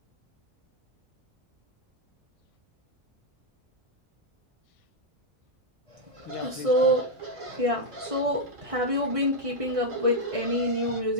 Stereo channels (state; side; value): late; left; 1.6 ms